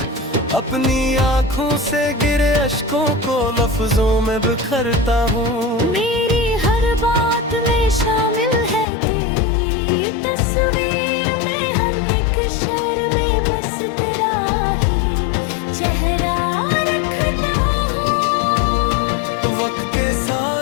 अपनी आँखों से गिरे अश्कों को लफ्जों में बिखरता हूँ। मेरी हर बात में शामिल है तेरी तस्वीर में, हम एक शहर में बस तेरा ही चेहरा रखता हूँ। वक्त के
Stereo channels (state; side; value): drops out; right; at 8.8 s